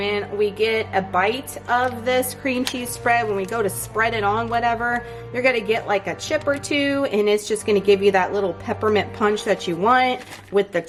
we get a bite of this cream cheese spread, when we go to spread it on whatever, you're gonna get like a chip or two, and it's just gonna give you that little peppermint punch that you want with the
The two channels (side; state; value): both; identical; correlation 1.00